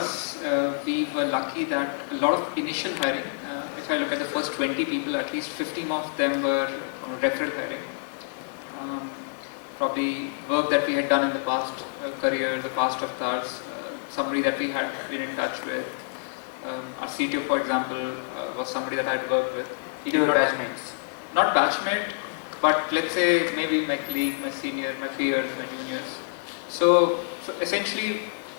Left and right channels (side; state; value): right; silent; digital silence